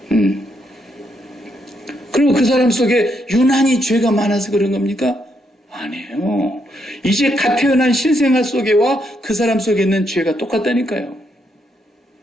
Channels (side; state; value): both; normal; correlation 0.77